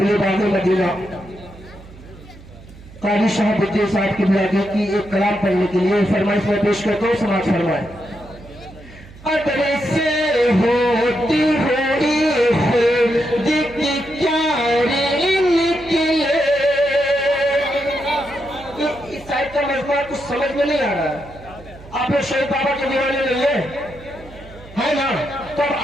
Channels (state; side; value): noise; right; hum, 20 dB below the sound